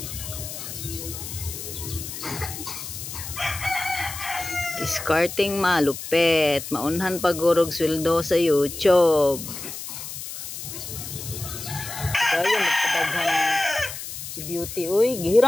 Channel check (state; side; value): noise; left; hiss, 9 dB below the sound